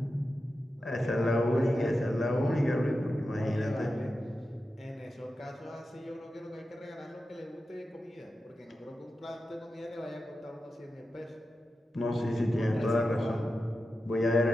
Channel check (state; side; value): normal; both; correlation 0.91